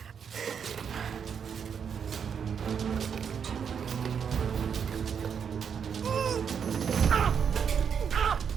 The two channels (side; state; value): left; quieter; 7.2 dB